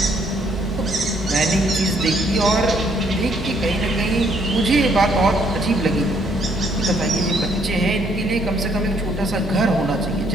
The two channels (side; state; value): both; normal; correlation 0.67